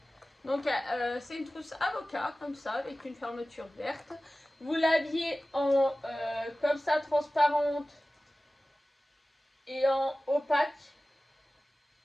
Donc c'est une trousse avocat, comme ça, avec une fermeture verte. Vous l'aviez en comme ça, transparente et en opaque.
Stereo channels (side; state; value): both; normal; correlation 0.96